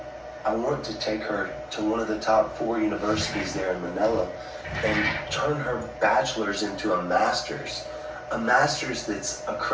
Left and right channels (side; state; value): both; identical; correlation 1.00